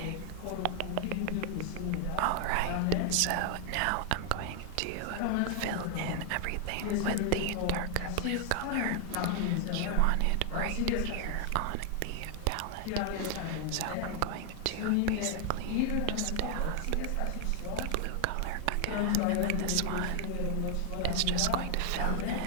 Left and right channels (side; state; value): both; different; correlation 0.00